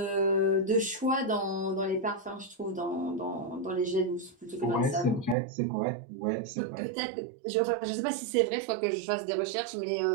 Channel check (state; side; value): drops out; left; at 5.4 s